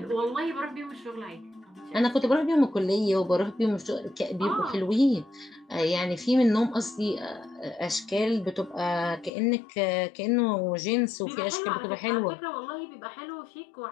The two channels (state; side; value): drops out; right; at 9.3 s